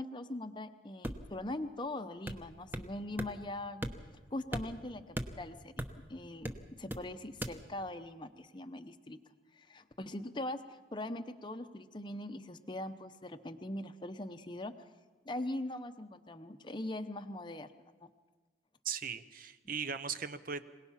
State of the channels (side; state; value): both; normal; correlation 0.56